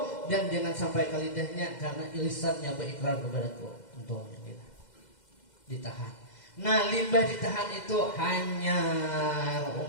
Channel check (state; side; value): late; right; 2.0 ms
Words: dan jangan sampai ke lidahnya karena lisannya berikrar kepadaku. Untungnya kita ditahan. Nah, limbah ditahan itu hanya